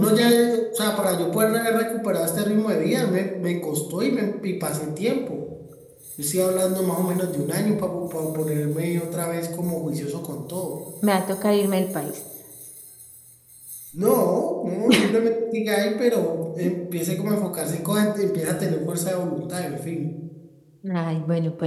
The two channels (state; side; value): identical; both; correlation 1.00